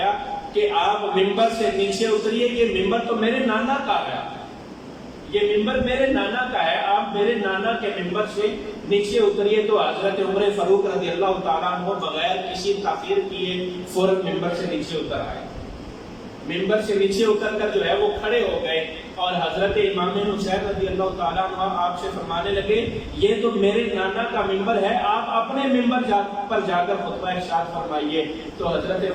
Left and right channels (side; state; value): both; identical; correlation 1.00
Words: کہ آپ ممبر سے نیچے اتریے، یہ ممبر تو میرے نانا کا ہے، یہ ممبر میرے نانا کا ہے، آپ میرے نانا کے ممبر سے نیچے اتریے، تو حضرت عمر فاروق رضی اللہ تعالیٰ عنہ بغیر کسی تاخیر کیے فوراً ممبر سے نیچے اتر آئے. ممبر سے نیچے اتر کر جو ہے وہ کھڑے ہو گئے اور حضرت امام حسین رضی اللہ تعالیٰ عنہ آپ سے فرمانے لگے یہ تو میرے نانا کا ممبر ہے، آپ اپنے ممبر پر جا کر خطبہ ارشاد فرمائیے. تو حضرت